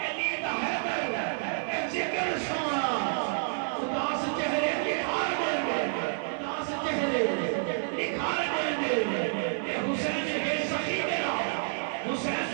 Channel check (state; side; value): silent; left; digital silence